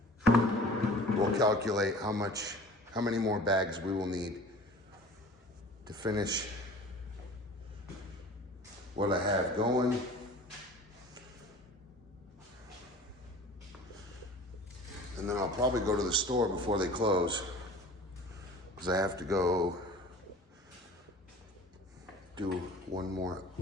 we'll calculate how many more bags we will need to finish what I have going. And then I'll probably go to the store before they close, because I have to go do one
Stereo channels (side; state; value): both; normal; correlation 0.43